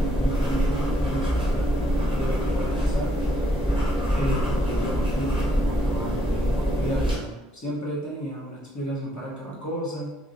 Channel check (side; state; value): both; normal; correlation 0.74